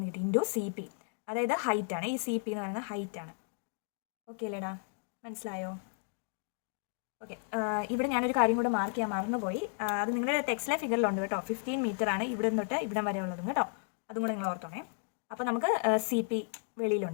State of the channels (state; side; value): silent; right; 55 dB below the other